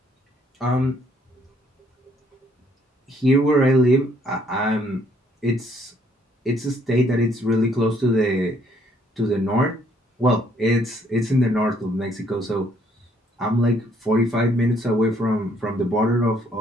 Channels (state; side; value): normal; both; correlation 0.66